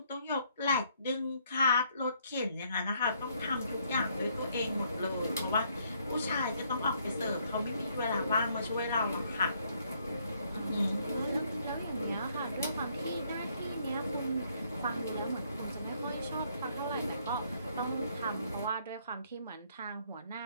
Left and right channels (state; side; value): inverted; both; correlation -0.69